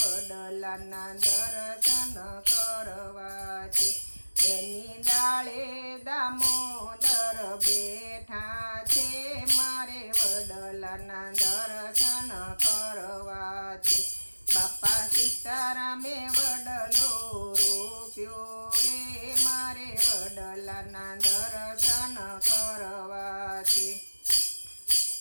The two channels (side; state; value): both; inverted; correlation -1.00